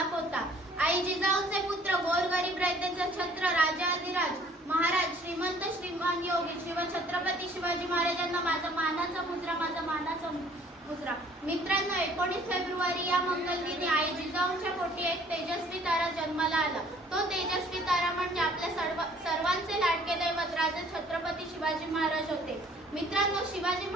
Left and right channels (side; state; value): both; normal; correlation 0.56